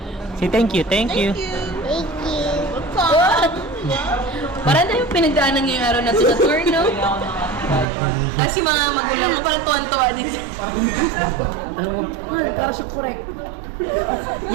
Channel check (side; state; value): left; drops out; at 7.9 s